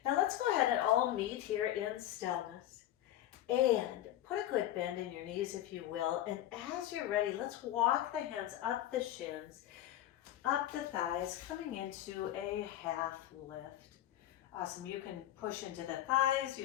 Now let's go ahead and all meet here in stillness. And put a good bend in your knees if you will. And as you're ready, let's walk the hands up the shins, up the thighs, coming into a half lift. Awesome. You can push into the thighs.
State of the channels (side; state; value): right; quieter; 13.1 dB